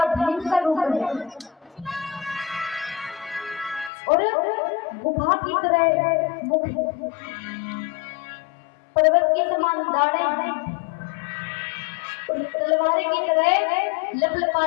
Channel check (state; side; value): drops out; right; at 3.9 s